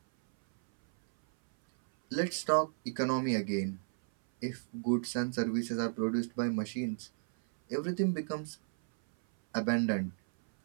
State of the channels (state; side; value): silent; left; 56 dB below the other